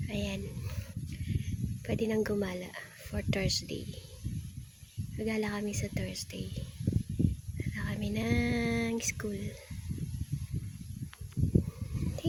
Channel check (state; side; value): identical; both; correlation 1.00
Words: Ayan. Pwede nang gumala for Thursday. Magala kami sa Thursday. Magala kami ng school.